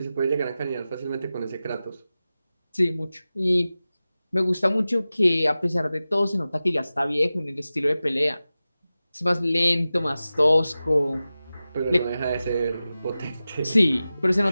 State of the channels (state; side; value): inverted; both; correlation -0.95